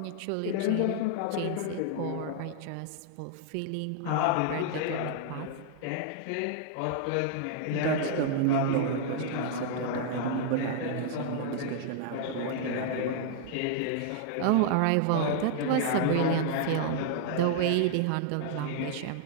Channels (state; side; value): different; both; correlation -0.01